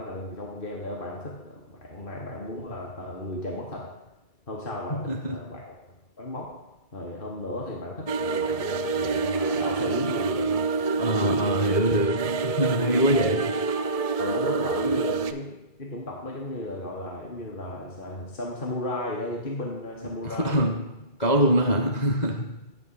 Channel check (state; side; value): late; right; 2.3 ms